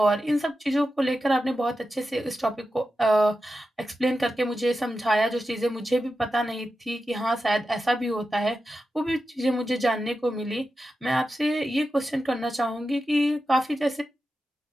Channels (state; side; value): normal; both; correlation 0.91